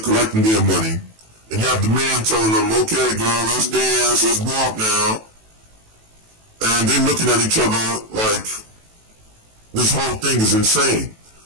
collecting their money, and you have the man telling them, okay girl, let's dance, let's walk now. And they're looking at each other like this whole thing is insane.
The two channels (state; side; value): late; left; 18 ms